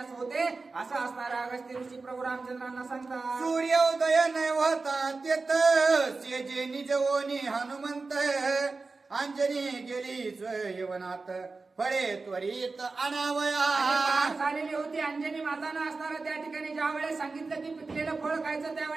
होते असं असणारं अगस्त्य ऋषी प्रभू रामचंद्रांना सांगतात. सूर्योदय न होता तेत सेजे निजवोनी हनुमंत. अंजनी गेली स्वयवनात फळे त्वरित अनावया. झालेली होती अंजनी मातानं असणारं त्या ठिकाणी ज्या वेळेस सांगितलं की पिकलेलं फळ खायचं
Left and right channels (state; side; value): quieter; left; 3.9 dB